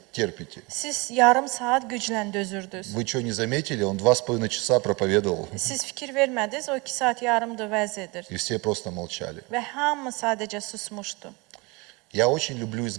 терпите. Siz yarım saat güclə dözürdünüz. Вы что, не заметили? Он 2,5 часа проповедовал. Siz fikir vermədiniz, o 2 saat yarımdır vəz edir. И все просто молчали. Və hamı sadəcə susmuşdu. Я очень люблю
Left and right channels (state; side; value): quieter; left; 26.7 dB